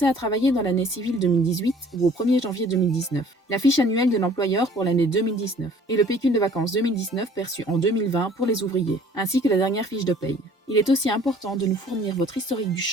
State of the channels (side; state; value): both; normal; correlation 0.53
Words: à travailler dans l'année civile 2018 ou au 1er janvier 2019, la fiche annuelle de l'employeur pour l'année 2019 et le pécule de vacances 2019 perçu en 2020 pour les ouvriers, ainsi que la dernière fiche de paye. Il est aussi important de nous fournir votre historique du